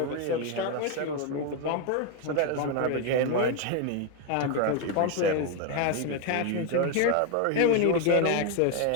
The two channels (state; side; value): different; both; correlation 0.01